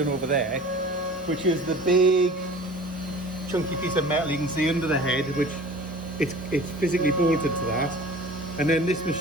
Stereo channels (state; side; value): normal; both; correlation 0.42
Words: over there, which is the big chunky piece of metal you can see under the head, which it's physically bolted to that. And then this